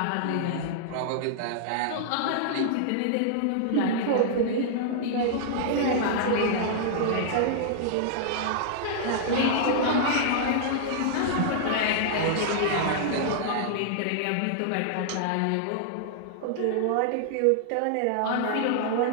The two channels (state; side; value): different; both; correlation -0.01